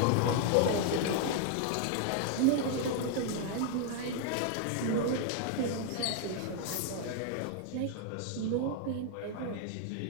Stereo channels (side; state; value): both; different; correlation 0.00